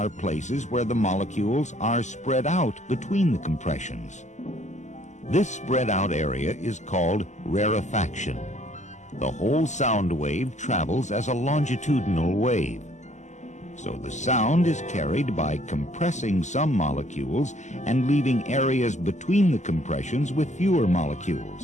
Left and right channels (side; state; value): right; late; 0.34 ms